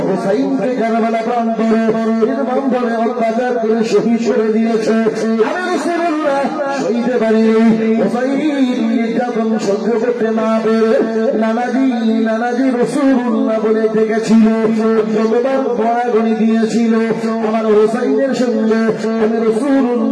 হোসাইনকে কারবালা প্রান্তরে নির্মমভাবে অত্যাচার করে শহীদ করে দিয়েছে। আমি রাসূলুল্লাহ শহীদে বাড়ি নির্যাতন সহ্য করতে না পেরে নানাজি নানাজি রাসূলুল্লাহ বলে ডেকেছিল, যতবার গড়াগড়ি দিয়েছিল আমার হোসাইনের সঙ্গে আমি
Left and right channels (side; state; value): both; identical; correlation 1.00